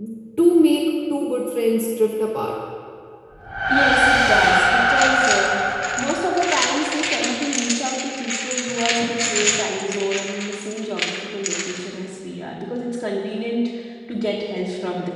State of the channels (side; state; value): both; identical; correlation 1.00